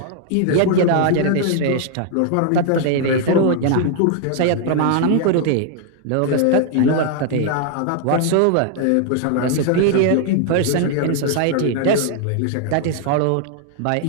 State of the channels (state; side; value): different; both; correlation 0.00